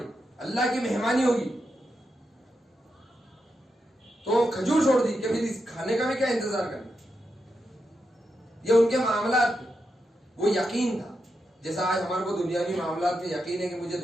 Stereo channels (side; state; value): both; normal; correlation 0.86